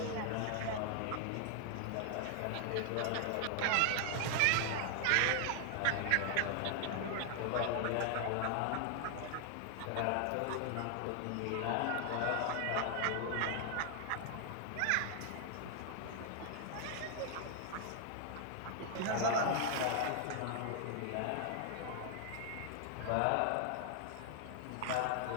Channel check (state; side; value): different; both; correlation 0.00